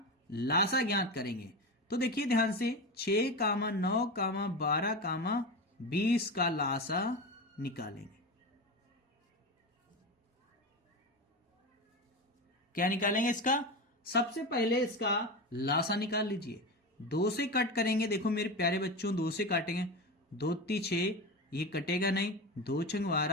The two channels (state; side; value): normal; both; correlation 0.22